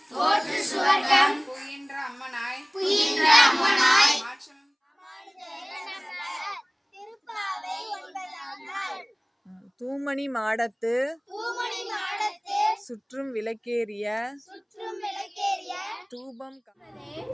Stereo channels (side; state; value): both; identical; correlation 1.00